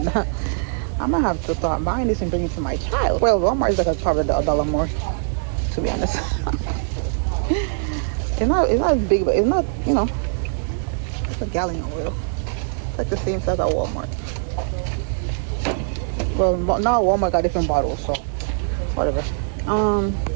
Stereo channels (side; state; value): left; silent; 64 dB below the other